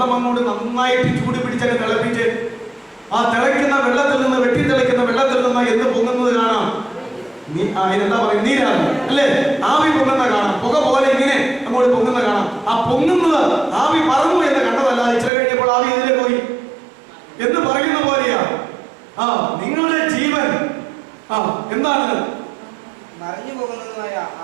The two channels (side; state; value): left; drops out; at 15.3 s